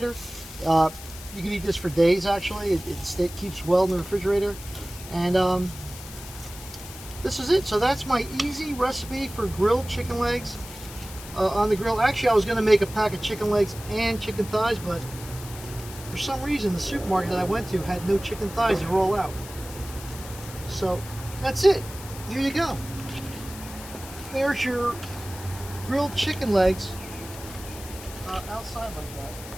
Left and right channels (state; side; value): noise; left; hiss, 14 dB below the sound